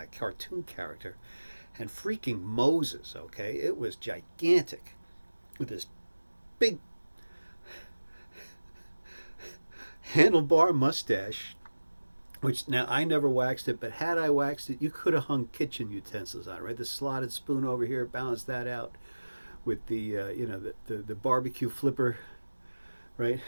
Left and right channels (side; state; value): both; inverted; correlation -1.00